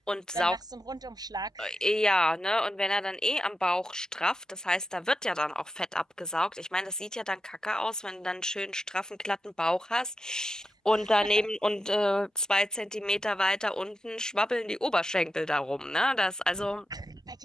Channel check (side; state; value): both; normal; correlation 0.88